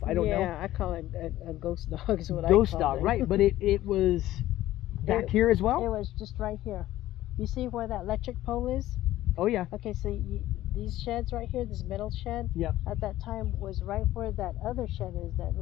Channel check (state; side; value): quieter; right; 14.7 dB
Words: I don't know. Yeah, I call it a ghost dog is what I call it. Ghost call dog, it. right. But it was back here as well? It was just right here. You see where that electric pole is? Oh, yeah. Okay, so these sheds right here, this metal shed, Yep. at that time was right where that other shed is, that